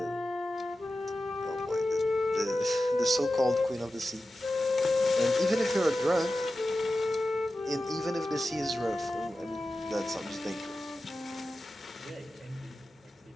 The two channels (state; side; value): normal; both; correlation 0.93